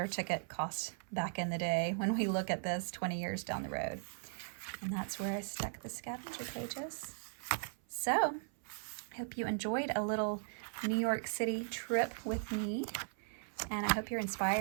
ticket cost back in the day when we look at this 20 years down the road. And that's where I stuck the scavenger pages. So I hope you enjoyed a little New York City trip with me, and I hope you're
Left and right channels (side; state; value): left; silent; 52 dB below the other